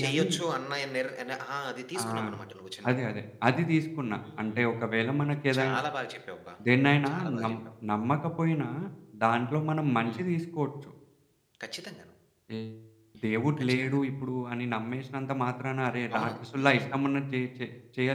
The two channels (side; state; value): both; identical; correlation 1.00